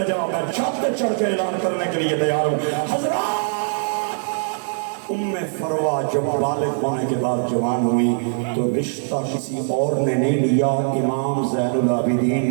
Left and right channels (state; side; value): silent; left; digital silence